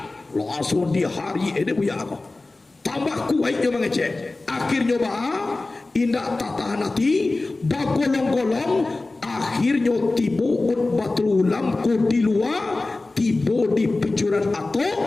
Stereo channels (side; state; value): right; quieter; 3.2 dB